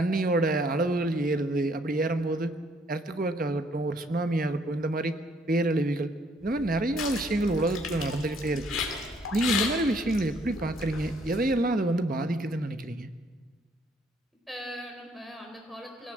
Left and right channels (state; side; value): normal; both; correlation 0.65